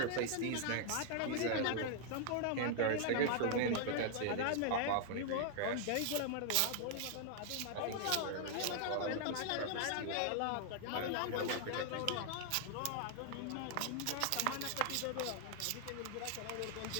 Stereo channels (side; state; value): both; different; correlation 0.00